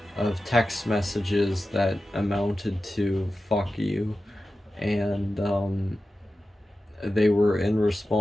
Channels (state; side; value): normal; both; correlation 0.93